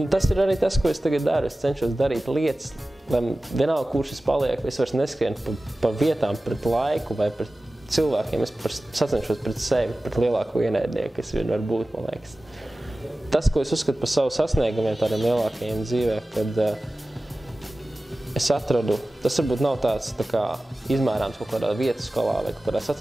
tas ir arī tas, ko es tagad daru. Es cenšos darīt lietas, lai vienalga, kurš es palieku, es vairs neskrienu pa vietām pret laiku vai pret cilvēkiem. Es sacenšos pret sevi, pret lielāko ienaidnieku, kas vien var būt, man liekas. Tas, ko es uzskatu par savu sasniegumiem tādiem lielākajiem dzīvē, kad es atradu, tas varbūt nav tāds tā kā izmērāms kaut kādā vietas skolā vai kaut kādā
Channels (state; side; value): normal; both; correlation 0.96